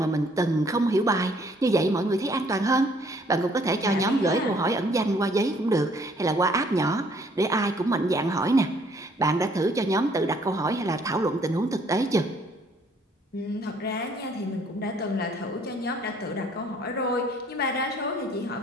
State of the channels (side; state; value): both; normal; correlation 0.62